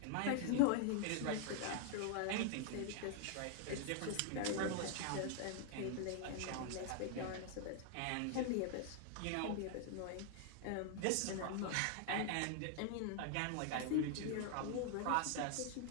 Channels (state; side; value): different; both; correlation 0.00